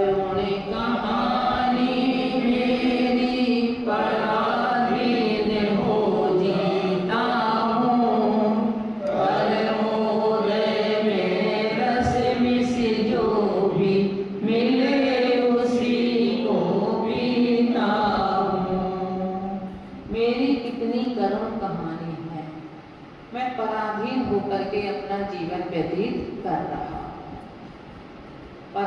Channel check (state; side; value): identical; both; correlation 1.00